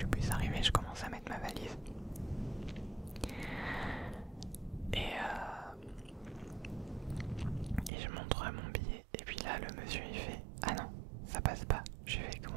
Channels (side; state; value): left; drops out; at 7.9 s